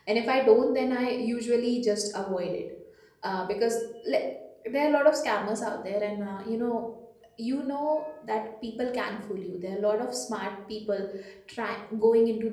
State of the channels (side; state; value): both; identical; correlation 1.00